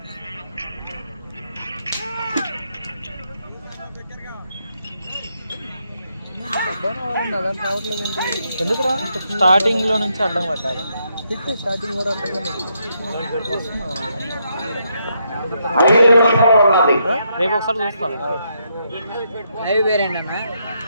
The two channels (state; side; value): inverted; both; correlation -0.78